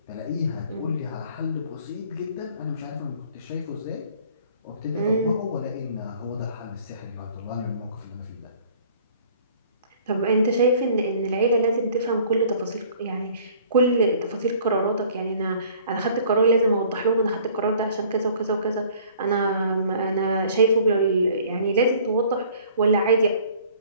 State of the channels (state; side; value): inverted; both; correlation -0.53